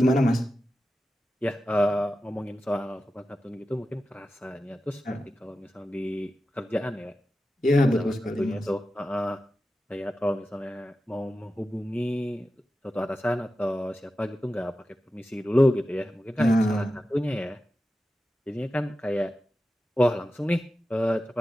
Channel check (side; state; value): both; normal; correlation 0.92